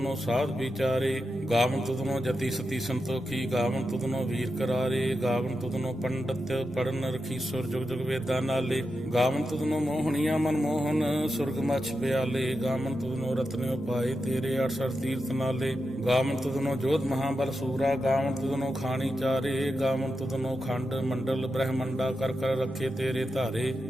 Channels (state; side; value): normal; both; correlation 0.88